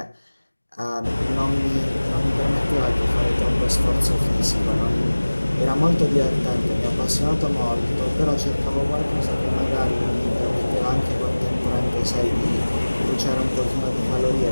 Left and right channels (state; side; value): inverted; both; correlation -1.00